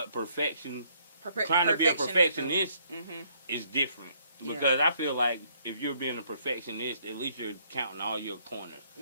perfection, trying to be a perfectionist is different. Because I feel like if you're being a perfectionist, at least you're counting all your corners.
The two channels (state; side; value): inverted; both; correlation -0.67